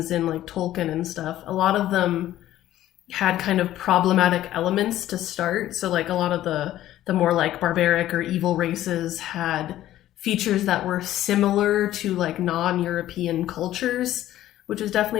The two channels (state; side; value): quieter; right; 13.6 dB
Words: in like Tolkien and stuff. A lot of them had kind of problematic elements to start. So like a lot of the more like barbaric or evil races had features that were similar to like non-European cultures, which is